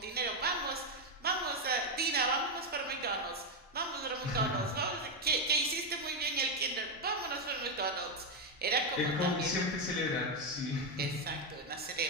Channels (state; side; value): normal; both; correlation 0.05